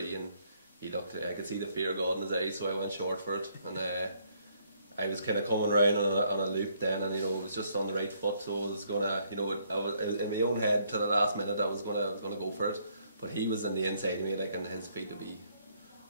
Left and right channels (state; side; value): inverted; both; correlation -0.69